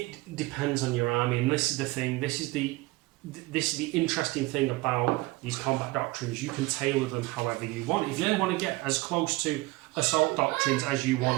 depends on your army, and this is the thing. This is the interesting thing about these combat doctrines. You can tailor them however you want. If you want to get as close to Assault Doctrines as you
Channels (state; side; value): quieter; left; 21.4 dB